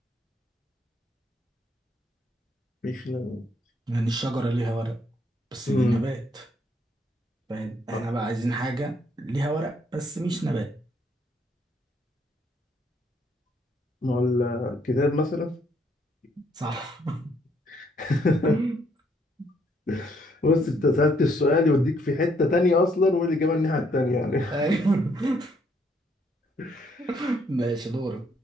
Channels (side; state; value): both; normal; correlation 0.69